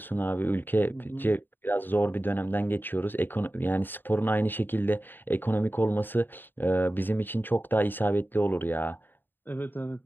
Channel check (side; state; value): right; late; 0.094 ms